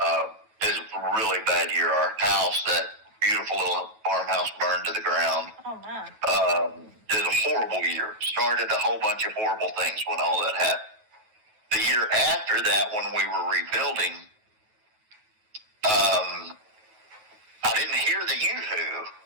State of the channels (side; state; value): left; late; 9.3 ms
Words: It was a really bad year. Our house, that beautiful little farmhouse, burned to the ground. Oh, my. It was a horrible year. Started a whole bunch of horrible things when all that happened. The year after that, when we were rebuilding, I didn't hear the yoo-hoo.